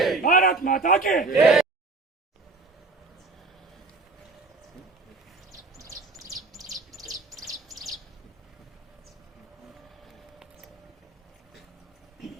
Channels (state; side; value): quieter; left; 3.6 dB